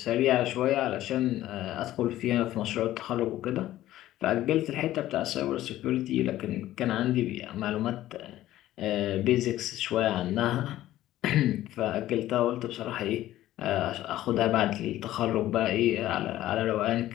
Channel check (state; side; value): quieter; right; 14.4 dB